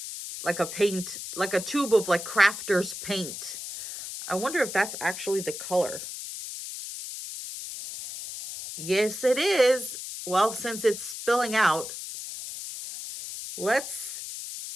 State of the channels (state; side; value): noise; left; hiss, 8 dB below the sound